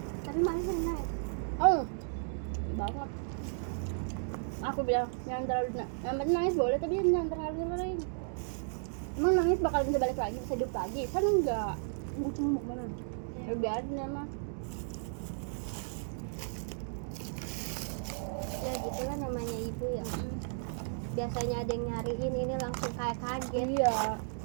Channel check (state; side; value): silent; left; digital silence